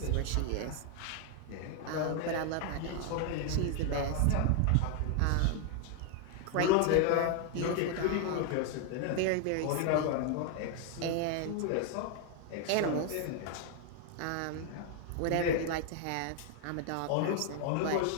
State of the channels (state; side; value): different; both; correlation 0.00